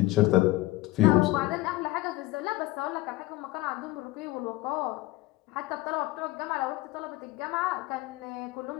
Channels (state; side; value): quieter; right; 18.5 dB